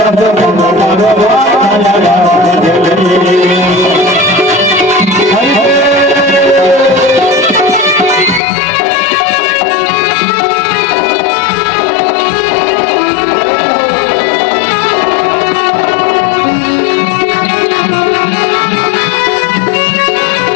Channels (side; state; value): right; drops out; at 8.4 s